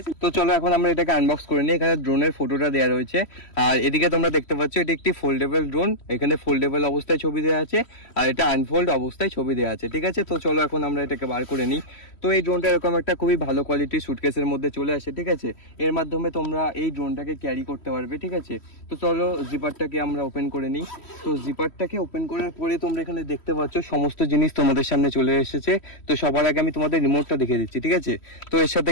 তো চলো এখন আমরা এটাকে আনবক্স করে নিই। এখানে ড্রোনের ফটোটা দেওয়া রয়েছে, আর এদিকে তোমরা দেখতে পাচ্ছ এটা একটি ফোল্ডেবল ড্রোন। এখানে ফোল্ডেবল অবস্থায় ছবি দেওয়া আছে, আর এটা আনফোল্ড অবস্থায় ছবি দেওয়া আছে। ঠিক আছে, তো চলো এখন আমরা এটাকে বার করে নিই। তো এই ড্রোনটা এরকম একটা খুবই ভালো কোয়ালিটির সুটকেসের মধ্যে চলে আসে। ঠিক আছে, এর মাধ্যমে তোমরা এই ড্রোনটাকে ক্যারি করতে পারবে। ঠিক আছে, তো চলো জিপারটাকে আমরা ওপেন করে নিই। তো জিপারটাকে ওপেন করার পরে তোমরা এখানে দেখতে পাচ্ছ সমস্ত জিনিস তোমাদের সামনে চলে এসেছে। তো সবার আগে আমি তোমাদের রিমোটটা দেখিয়ে দিচ্ছি। ঠিক আছে, তো এর সাথে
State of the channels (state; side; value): late; right; 3.1 ms